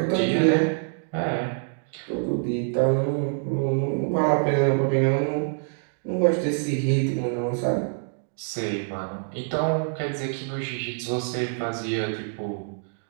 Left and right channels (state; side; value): silent; left; digital silence